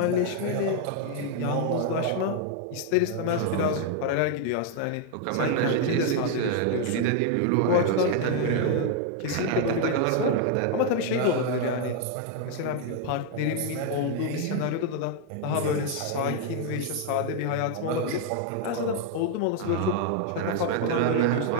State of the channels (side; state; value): both; different; correlation 0.01